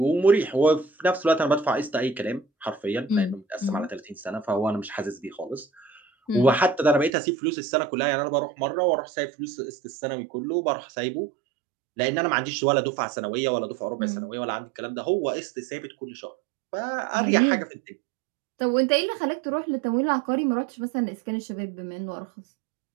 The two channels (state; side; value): drops out; left; at 7.1 s